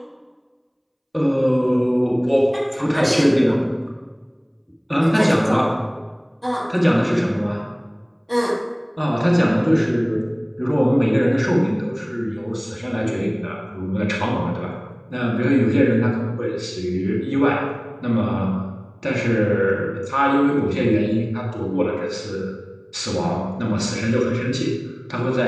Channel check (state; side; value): identical; both; correlation 1.00